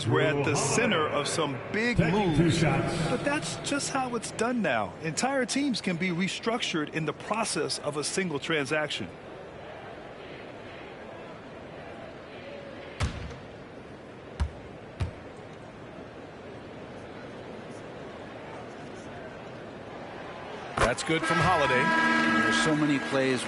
were at the center of some big moves. But that's just how it's done now. Entire teams can be restructured in the process of a single transaction. That's good from Holiday. There's so many plays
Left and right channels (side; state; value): both; identical; correlation 1.00